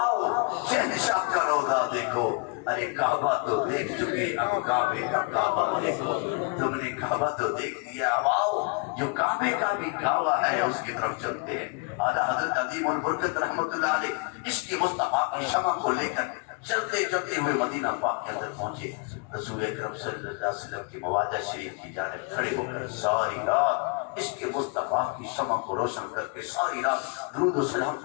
شہنشاہ کا روضہ دیکھو. ارے کعبہ تو دیکھ چکے، اب کعبے کا کعبہ دیکھو. تم نے کعبہ تو دیکھ لیا، اب آؤ جو کعبے کا بھی کعبہ ہے اس کی طرف چلتے ہیں. اعلیٰ حضرت عظیم البرکت رحمت اللہ علیہ عشق مصطفیٰ کی شمع کو لے کر چلتے چلتے ہوئے مدینہ پاک کے اندر پہنچے. رسول اکرم صلی اللہ علیہ وسلم کی مواجہ شریف کی جانب کھڑے ہو کر ساری رات عشق مصطفیٰ کی شمع کو روشن کر کے ساری رات درود و سلام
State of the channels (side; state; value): right; quieter; 33.5 dB